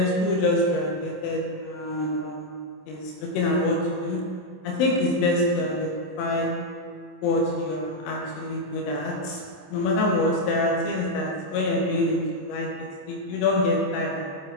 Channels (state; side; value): late; right; 27 ms